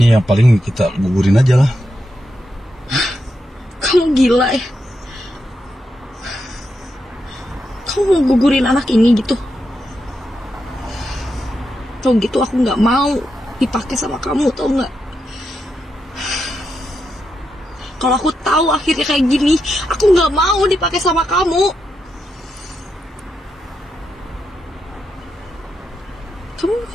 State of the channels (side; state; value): both; normal; correlation 0.85